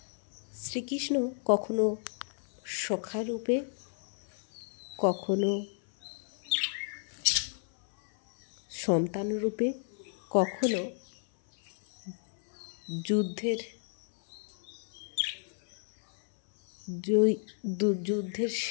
শ্রীকৃষ্ণ কখনো সখা রূপে, কখনো সন্তান রূপে, কখনো যুদ্ধের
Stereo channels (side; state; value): right; silent; 56 dB below the other